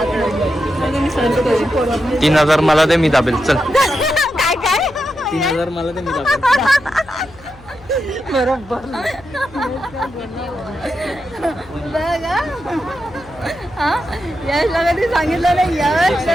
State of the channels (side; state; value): left; noise; hum, 22 dB below the sound